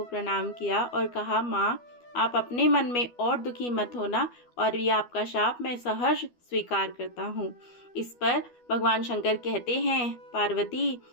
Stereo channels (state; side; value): late; right; 12 ms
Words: प्रणाम किया और कहा, माँ आप अपने मन में और दुखी मत होना और ये आपका शाप मैं सहर्ष स्वीकार करता हूँ। इस पर भगवान शंकर कहते हैं, पार्वती